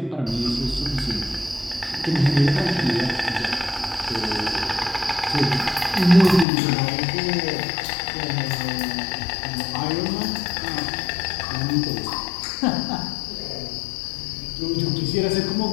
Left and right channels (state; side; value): drops out; right; at 6.5 s